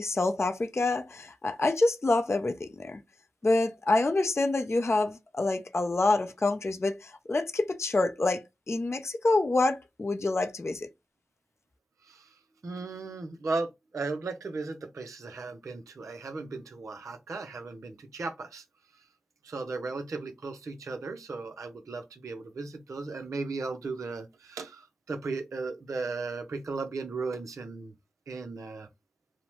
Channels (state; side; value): normal; both; correlation 0.90